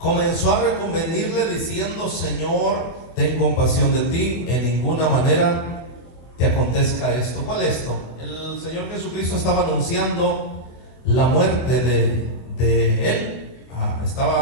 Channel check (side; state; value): right; late; 25 ms